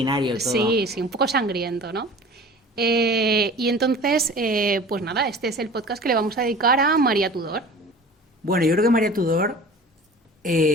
todo. Sí, un poco sangriento, ¿no? Y entonces, pues nada, este es el podcast que le vamos a dedicar a María Tudor. Bueno, yo creo que María Tudor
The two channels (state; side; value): normal; both; correlation 0.41